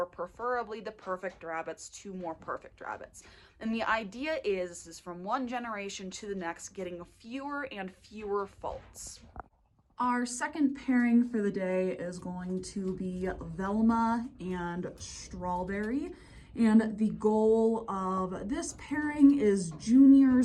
preferably the perfect rabbits to more perfect rabbits. And the idea is from one generation to the next, getting fewer and fewer faults. Our second pairing for the day is going to be Velma and Strawberry. And the goal of this pairing is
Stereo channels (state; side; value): identical; both; correlation 1.00